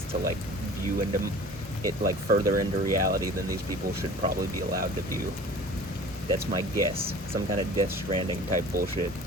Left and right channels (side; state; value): both; normal; correlation 0.43